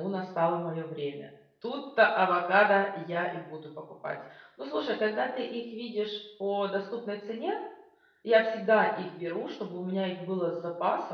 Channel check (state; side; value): identical; both; correlation 1.00